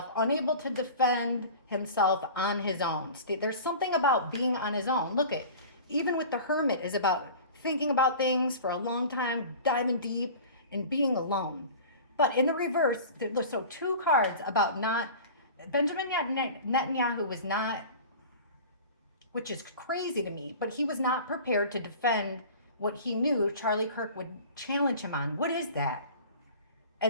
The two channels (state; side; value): inverted; both; correlation -0.39